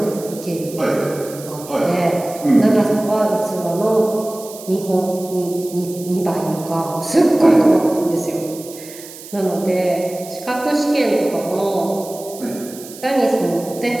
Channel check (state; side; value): noise; right; hiss, 16 dB below the sound